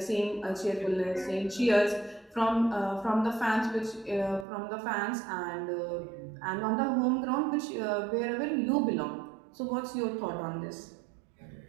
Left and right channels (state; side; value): drops out; left; at 4.5 s